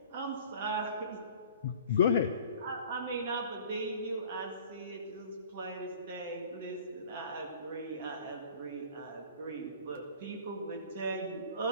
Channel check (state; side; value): inverted; both; correlation -0.46